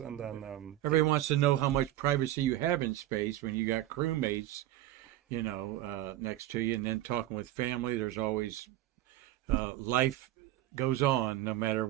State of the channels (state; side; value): quieter; left; 14.1 dB